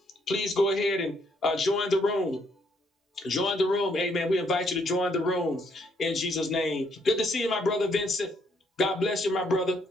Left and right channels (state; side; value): normal; both; correlation 0.71